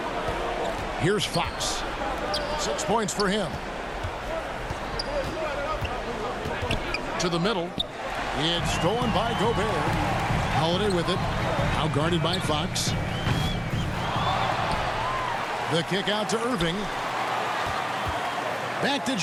Here's Fox. 6 points for him. To the middle. It's stolen by Gobert. Holiday with it. Now guarded by Fox. The kick out to Irving. Back to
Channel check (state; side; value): identical; both; correlation 1.00